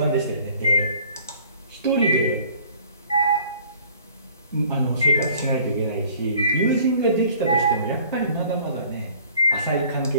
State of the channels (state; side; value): inverted; both; correlation -0.54